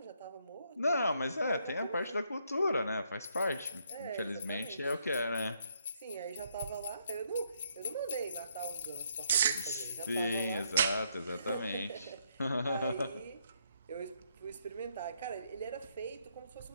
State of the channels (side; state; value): both; inverted; correlation -0.73